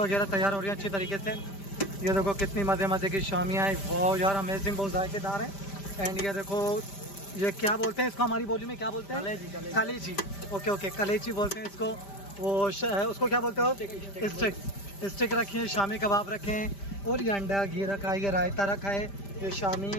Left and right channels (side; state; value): right; late; 5.1 ms